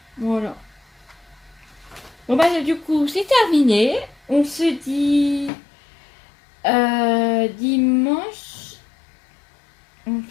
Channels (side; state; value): right; drops out; at 5.5 s